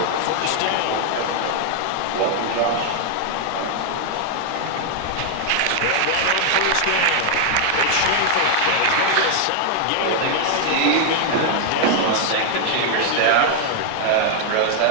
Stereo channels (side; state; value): both; different; correlation 0.00